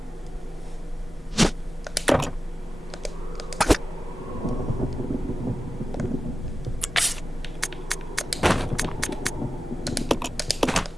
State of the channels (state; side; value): normal; both; correlation 0.94